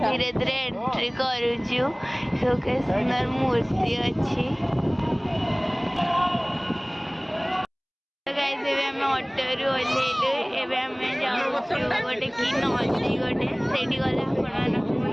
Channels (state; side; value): identical; both; correlation 1.00